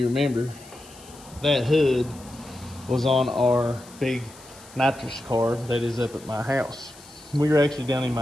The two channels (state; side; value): noise; left; hiss, 21 dB below the sound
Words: remember, that hood was on our big nitrous car that is up at my house. We were actually down in